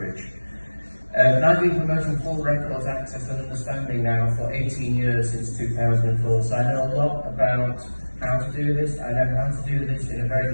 And I've been promoting full records access and understanding now for 18 years, since 2004, so I know a lot about how to do this. I know how to do this in a very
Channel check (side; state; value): both; inverted; correlation -1.00